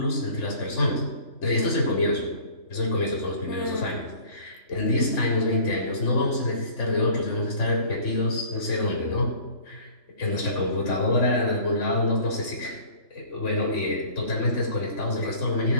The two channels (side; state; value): right; late; 3.5 ms